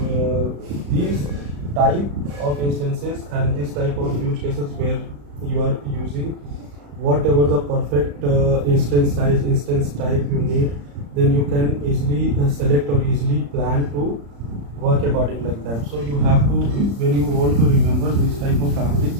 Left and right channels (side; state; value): left; late; 35 ms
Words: these type of instances and this type of use cases where you are using whatever the perfect instance size, instance type you need, then you can easily select or easily plan to work according like that. So you have to, when you want to remember this type of